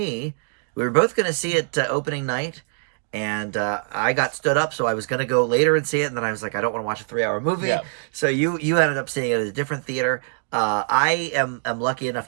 We were both going to see it opening night, and I got stood up, so I was going to go later and see it, and then I was like, I don't want to watch a 3-hour movie. Yeah. So you ended up seeing it at a different theater. I am lucky enough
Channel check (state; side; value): silent; left; 63 dB below the other